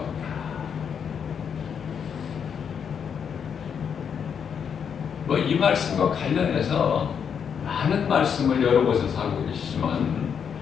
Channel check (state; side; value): quieter; right; 7.3 dB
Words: 없다. 뭐 이 말씀과 관련해서 많은 말씀을 여러 곳에서 하고 계시지만